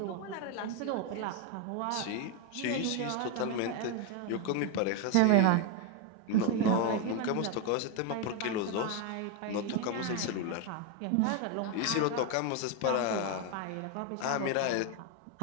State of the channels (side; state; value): both; different; correlation 0.01